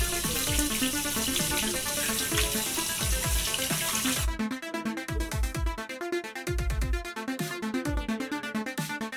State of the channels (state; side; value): identical; both; correlation 1.00